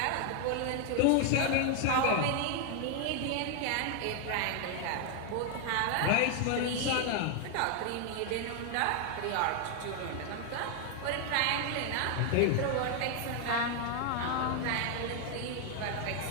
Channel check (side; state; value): both; different; correlation 0.00